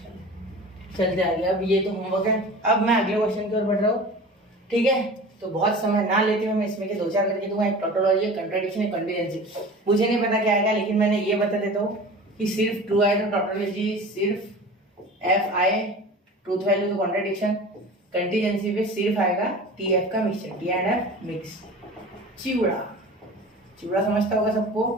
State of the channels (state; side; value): normal; both; correlation 0.38